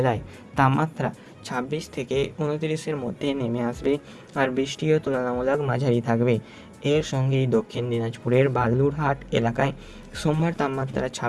তাপমাত্রা 26 থেকে 29-এর মধ্যে নেমে আসবে আর বৃষ্টিও তুলনামূলক মাঝারি থাকবে। এর সঙ্গেই দক্ষিণ দিনাজপুরের বালুরহাট এলাকায় সোমবার তাপমাত্রা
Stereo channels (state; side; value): identical; both; correlation 1.00